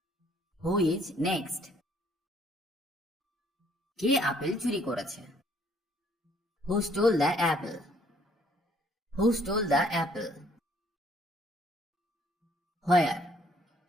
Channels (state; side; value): normal; both; correlation 0.63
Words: who is next. কে আপেল চুরি করেছে? Who stole the apple, who stole the apple. Where,